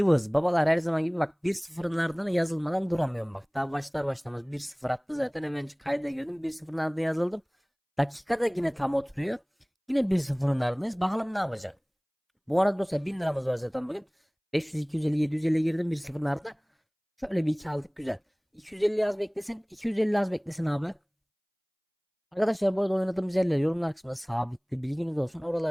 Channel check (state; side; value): identical; both; correlation 1.00